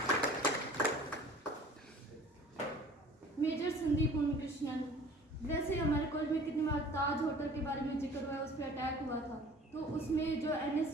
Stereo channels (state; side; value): normal; both; correlation 0.47